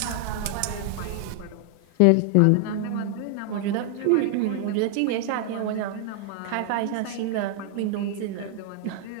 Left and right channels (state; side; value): different; both; correlation 0.00